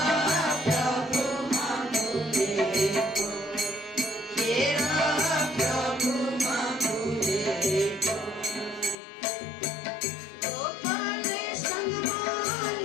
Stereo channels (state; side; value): drops out; right; at 9.0 s